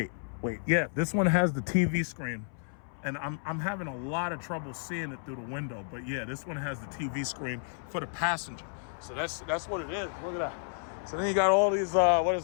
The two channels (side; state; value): right; silent; 57 dB below the other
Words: Yeah, this one has the TV screen. And I'm having a lot of trouble seeing it through the window. But yeah, this one has the TV screen for the passenger. So that's what it is. Look at that. So then you got all these,